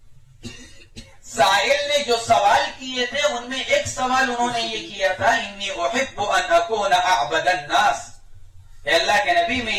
سائل نے جو سوال کیے تھے ان میں ایک سوال انہوں نے یہ کیا تھا انی احب ان اکون اعبد الناس، اے اللہ کے نبی میں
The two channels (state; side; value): identical; both; correlation 1.00